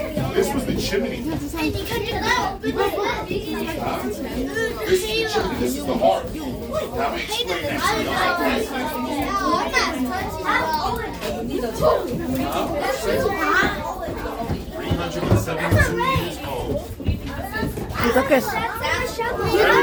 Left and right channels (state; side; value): identical; both; correlation 1.00